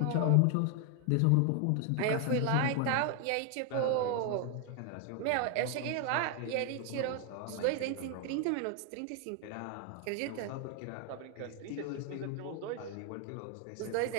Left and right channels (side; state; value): both; different; correlation 0.01